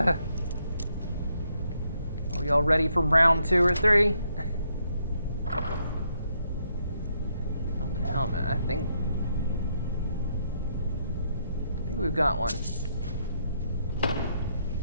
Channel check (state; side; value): inverted; both; correlation -0.76